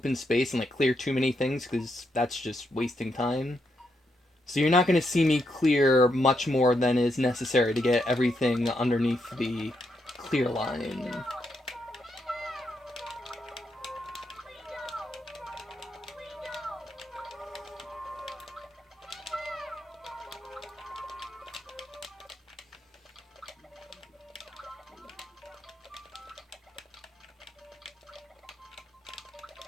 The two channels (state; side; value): normal; both; correlation 0.80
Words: space and clear too many things, because that's just wasting time. So you're not going to see me clear much more than is necessary to get everything underneath the clear line.